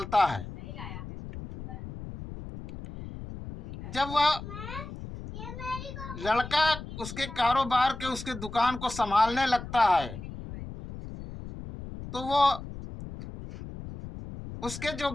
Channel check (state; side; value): noise; left; rumble, 11 dB below the sound